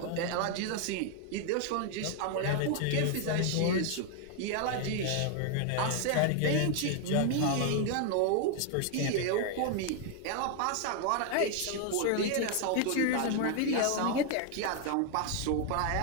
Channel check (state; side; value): different; both; correlation 0.01